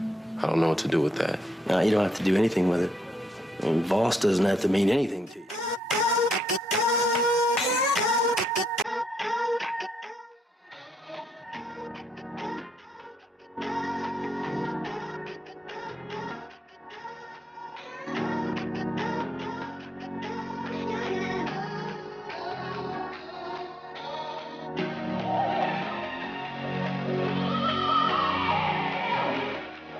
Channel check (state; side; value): normal; both; correlation 0.80